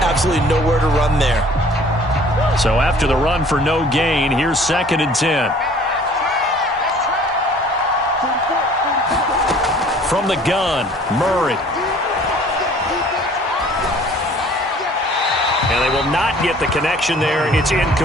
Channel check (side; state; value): both; normal; correlation 0.52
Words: Absolutely nowhere to run there. So after the run for no gain, here's 2nd and 10. From the gun, Murray. And they will not get the connection there. It's